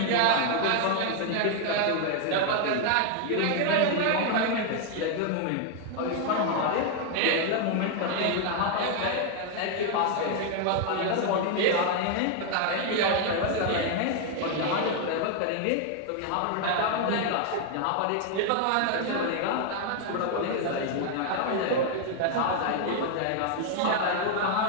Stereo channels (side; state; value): both; different; correlation 0.00